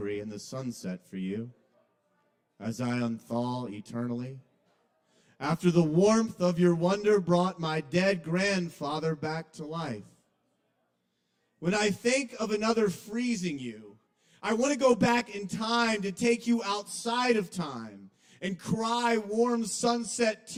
in the sunset for you as I unthaw eternally. After the warmth of your wonder brought my dead grandfather back to life. When I think of another freezing you, I want to go back in time to take you outside of time and cry warm sunset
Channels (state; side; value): identical; both; correlation 1.00